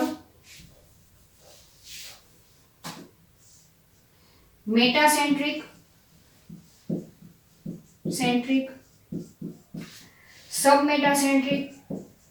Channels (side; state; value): both; identical; correlation 1.00